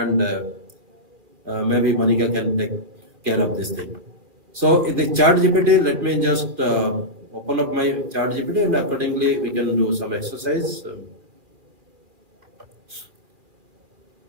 maybe Monica can take care of this thing. So in the ChatGPT, let me just open up my ChatGPT, and accordingly we can do some exercise.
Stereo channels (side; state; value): left; late; 2.3 ms